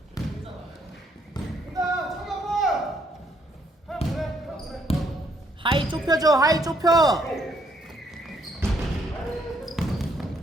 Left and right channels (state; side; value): normal; both; correlation 0.70